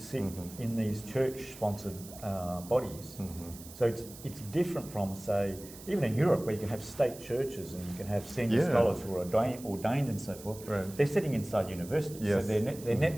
in these church-sponsored bodies. So it's different from, say, even in Europe, where you can have state churches and you can have senior scholars who are ordained and so forth. Right. They're sitting inside universities, so their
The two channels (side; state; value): right; noise; hiss, 17 dB below the sound